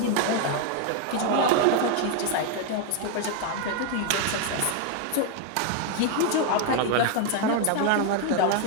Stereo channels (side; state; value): both; different; correlation 0.01